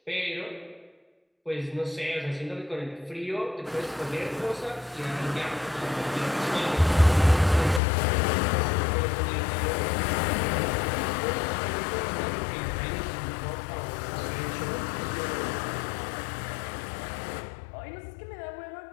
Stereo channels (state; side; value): drops out; right; at 7.8 s